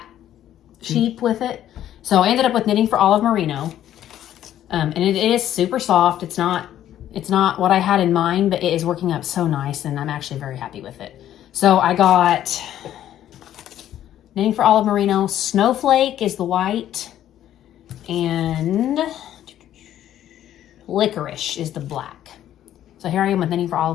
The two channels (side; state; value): right; quieter; 11.7 dB